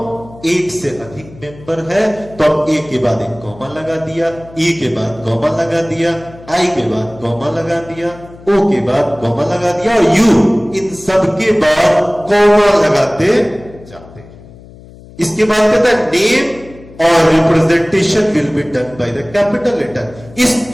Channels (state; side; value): noise; left; hum, 21 dB below the sound